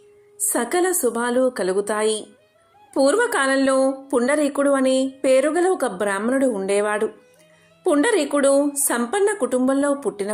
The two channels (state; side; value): identical; both; correlation 1.00